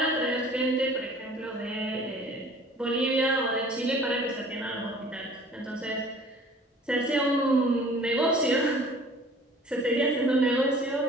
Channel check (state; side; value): normal; both; correlation 0.49